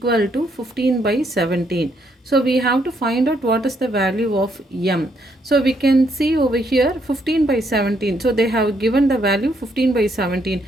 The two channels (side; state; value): both; normal; correlation 0.73